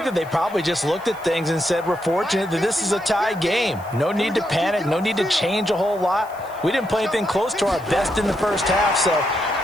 that they probably just looked at things and said, we're fortunate that this is a tie game. No need to panic. No need to change a whole lot. We didn't play anything close to our best in the first half, so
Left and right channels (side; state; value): right; noise; hiss, 24 dB below the sound